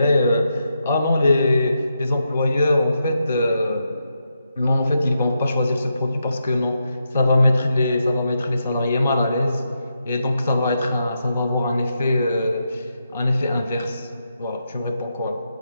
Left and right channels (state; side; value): inverted; both; correlation -0.84